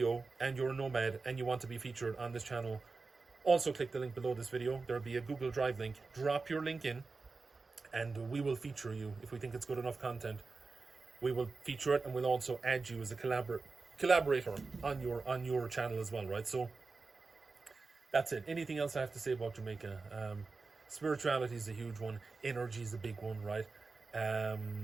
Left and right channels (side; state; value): left; quieter; 4.1 dB